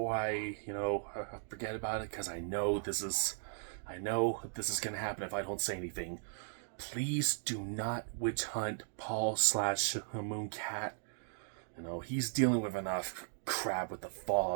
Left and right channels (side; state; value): left; silent; digital silence